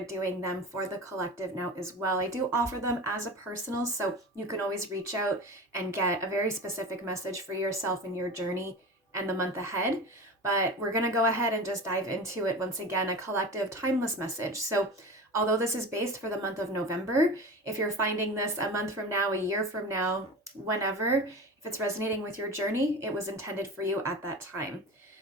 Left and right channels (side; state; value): both; normal; correlation 0.31